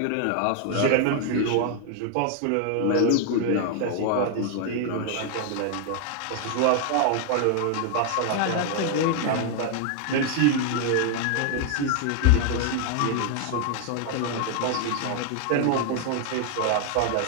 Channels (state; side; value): different; both; correlation 0.00